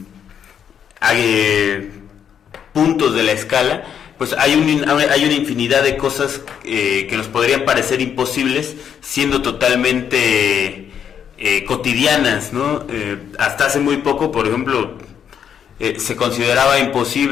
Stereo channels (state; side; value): quieter; right; 8.3 dB